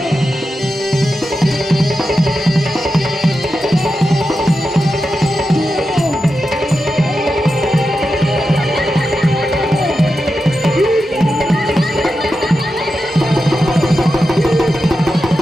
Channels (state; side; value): normal; both; correlation 0.90